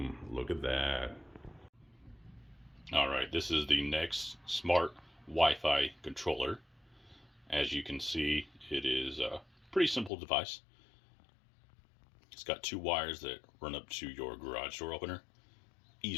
Look at that. Alright, this is the Nexx Smart Wi-Fi controller. As you can see, it is a pretty simple device. It's got two wires that run up to your garage door opener.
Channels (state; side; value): drops out; right; at 10.1 s